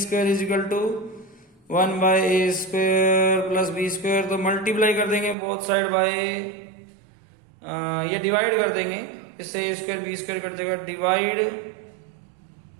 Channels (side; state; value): left; drops out; at 5.4 s